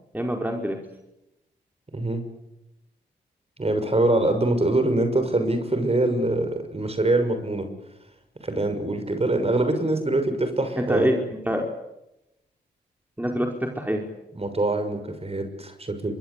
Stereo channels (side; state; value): both; normal; correlation 0.71